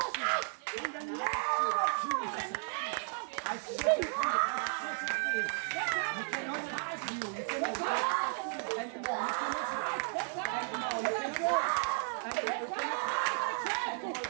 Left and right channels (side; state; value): left; silent; 55 dB below the other